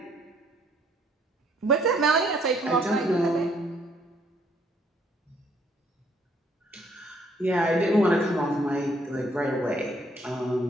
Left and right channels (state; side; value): normal; both; correlation 0.66